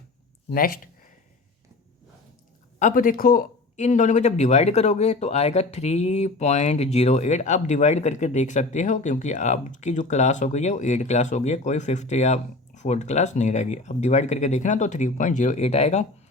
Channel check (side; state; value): right; quieter; 3.2 dB